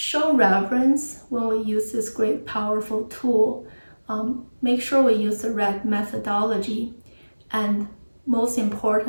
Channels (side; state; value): both; inverted; correlation -1.00